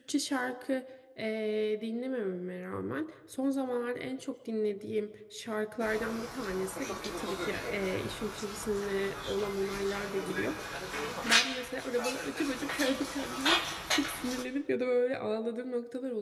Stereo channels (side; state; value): both; identical; correlation 1.00